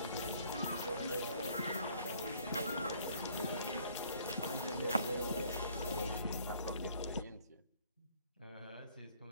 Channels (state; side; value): inverted; both; correlation -0.60